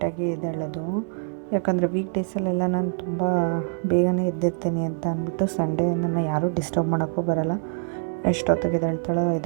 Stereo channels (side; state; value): left; silent; 62 dB below the other